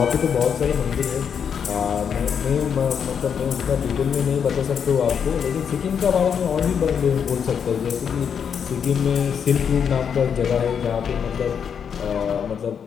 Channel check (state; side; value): quieter; right; 7.4 dB